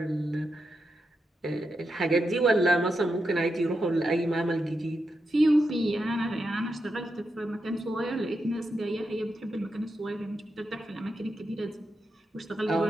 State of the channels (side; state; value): both; normal; correlation 0.86